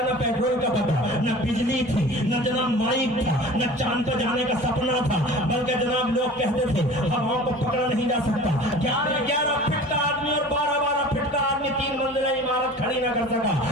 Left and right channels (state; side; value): normal; both; correlation 0.41